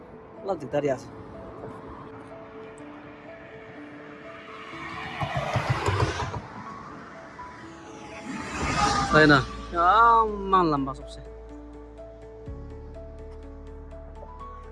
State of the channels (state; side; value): identical; both; correlation 1.00